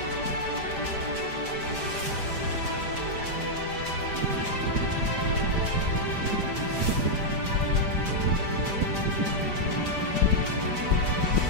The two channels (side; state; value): left; late; 5.0 ms